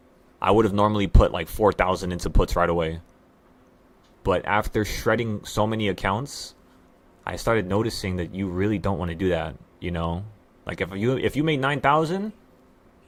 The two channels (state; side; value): identical; both; correlation 1.00